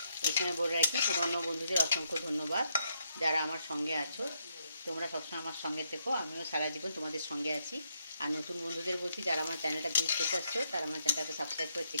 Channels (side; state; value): both; inverted; correlation -0.77